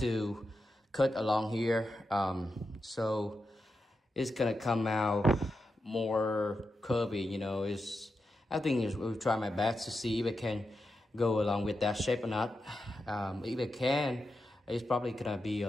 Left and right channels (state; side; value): normal; both; correlation 0.88